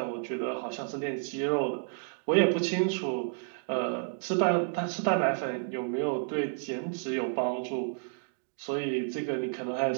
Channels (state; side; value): silent; left; digital silence